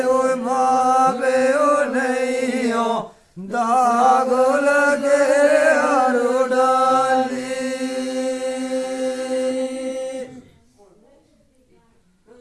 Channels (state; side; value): identical; both; correlation 1.00